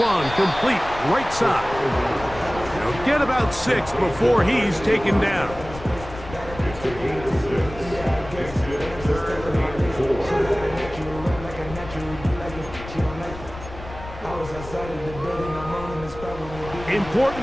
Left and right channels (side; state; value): left; noise; rumble, 13 dB below the sound